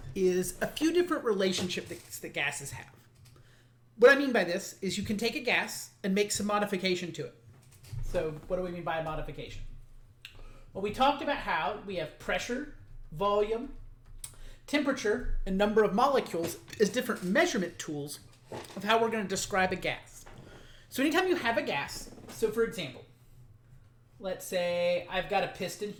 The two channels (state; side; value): identical; both; correlation 1.00